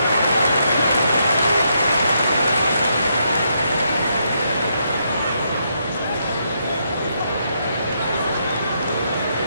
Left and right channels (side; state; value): both; inverted; correlation -0.78